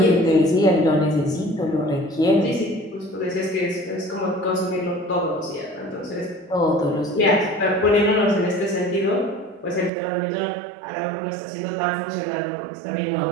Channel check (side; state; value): left; drops out; at 9.9 s